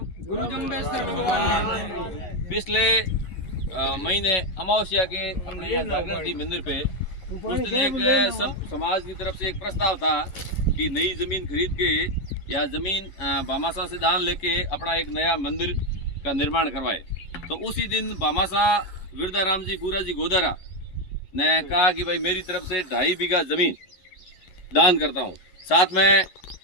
गुरु जम्बेश्वर भगवान पिछले महीने अमावस्या के अपने यहाँ जागरण थी मंदिर पे, उस दिन एक सब समाज की तरफ से एक प्रस्ताव था कि नई जमीन खरीद के या जमीन भामाशाह से दान लेके अपना एक नया मंदिर का निर्माण करवाए। तो उसी दिन भामाशाह विरदाराम जी पूरा जी गोदारा ने कहा कि भाई मेरी तरफ से 2.5 बीघा जमीन दान करता हूँ। साथ में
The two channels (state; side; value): late; right; 11 ms